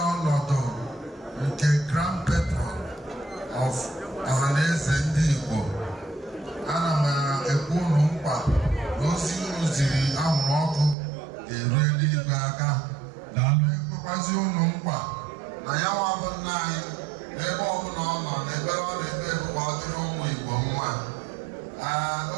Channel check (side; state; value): left; drops out; at 11.0 s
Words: ọnọdụ nke Grand Patron of Ohaneze Ndi Igbo. Ana m ekwu ụnụ mkpa na ozi unu ziri anwụrụ ọkụ ga-eru eluigwe aka. Ekwekwazị ụnụ mkpa na ya nwa bụ nna anyị n'ebe ọbụla ọ nọ n'ebe ọ na-ebe ka ọ dịrị ụmụ Igbo mma.